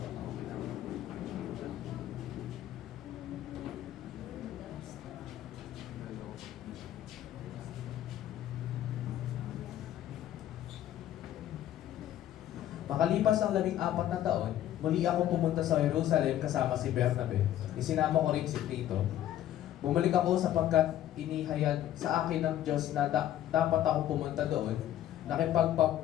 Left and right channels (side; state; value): right; quieter; 12.1 dB